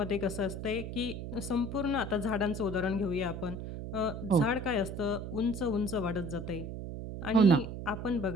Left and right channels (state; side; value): noise; right; hum, 7 dB below the sound